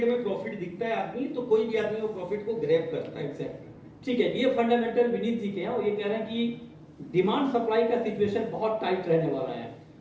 में प्रॉफिट दिखता है आदमी, तो कोई भी आदमी वो प्रॉफिट को ग्रैब करता है। एग्जैक्टली, ठीक है। ये फंडामेंटल विनीत जी के हैं और ये कह रहे हैं कि डिमांड सप्लाई का सिचुएशन बहुत टाइट रहने वाला है।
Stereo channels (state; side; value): identical; both; correlation 1.00